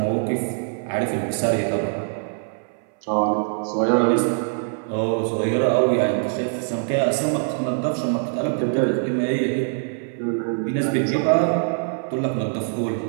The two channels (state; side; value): silent; left; 58 dB below the other